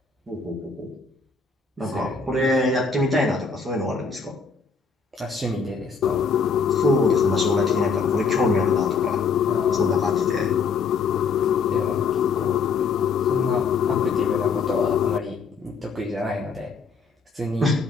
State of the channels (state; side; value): quieter; right; 5.1 dB